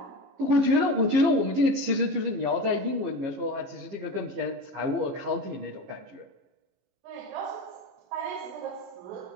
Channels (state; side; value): late; left; 15 ms